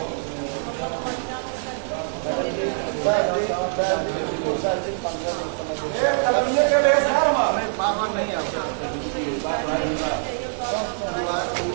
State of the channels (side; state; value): left; silent; digital silence